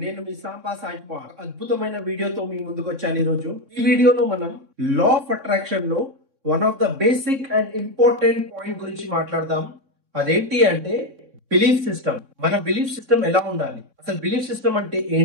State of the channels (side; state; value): left; late; 3.6 ms